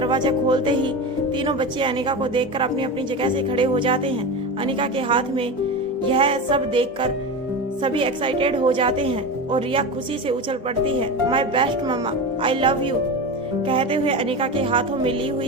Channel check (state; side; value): normal; both; correlation 0.24